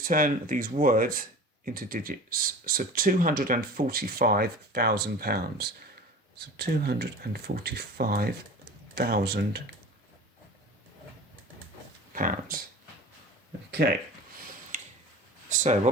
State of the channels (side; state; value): both; normal; correlation 0.37